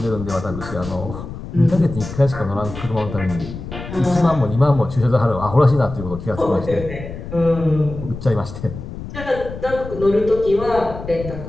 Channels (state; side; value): noise; left; rumble, 10 dB below the sound